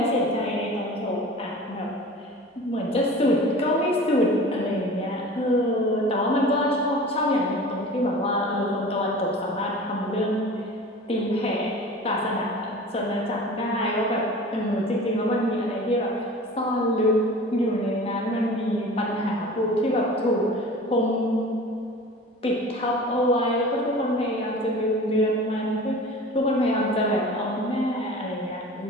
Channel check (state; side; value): normal; both; correlation 0.39